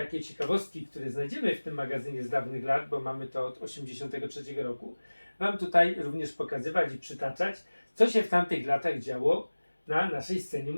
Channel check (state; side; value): inverted; both; correlation -1.00